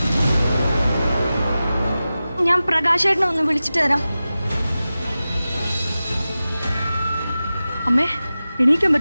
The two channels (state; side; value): inverted; both; correlation -0.95